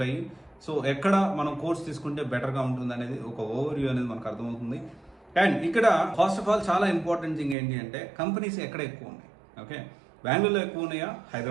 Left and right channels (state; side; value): drops out; left; at 7.6 s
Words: సో ఎక్కడ మనం కోర్స్ తీసుకుంటే బెటర్ గా ఉంటుంది అనేది ఒక ఓవర్ వ్యూ అనేది మనకు అర్థమవుతుంది. అండ్ ఇక్కడ ఫస్ట్ ఆఫ్ ఆల్ చాలా ఇంపార్టెంట్ థింగ్ ఏంటి అంటే కంపెనీస్ ఎక్కడ ఎక్కువ ఉన్నాయి. ఓకే, బెంగళూరులో ఎక్కువ ఉన్నాయా,